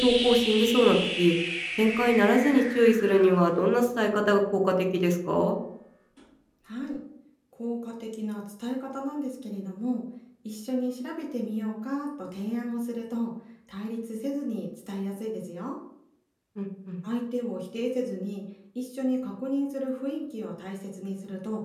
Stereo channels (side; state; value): both; identical; correlation 1.00